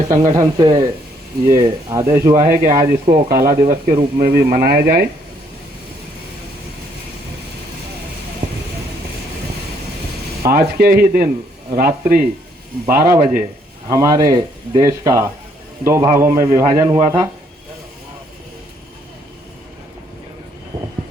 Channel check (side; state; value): both; normal; correlation 0.68